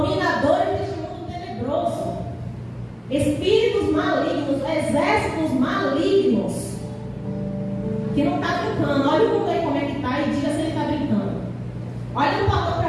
deste mundo tenebroso, espíritos malignos, exércitos malignos, que não está brincando. Olha o mundo aí como é que está e diga se ele está brincando. Olha o portão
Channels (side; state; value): both; identical; correlation 1.00